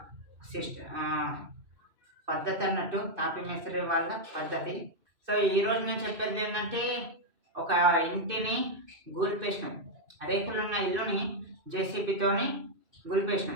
పద్ధతి అన్నట్టు. తాపీ మేస్త్రి వాళ్ళ పద్ధతి. సో, ఈరోజు నేను చెప్పేది ఏంటంటే ఒక ఇంటిని గూల్పేసినాం. రేకులున్న ఇల్లుని జేసీబీతోని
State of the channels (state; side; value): late; left; 2.6 ms